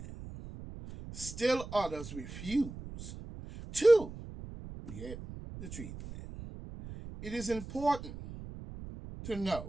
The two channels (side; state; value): right; noise; rumble, 12 dB below the sound